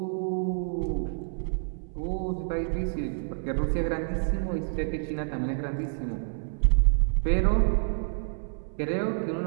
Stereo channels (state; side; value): silent; left; 59 dB below the other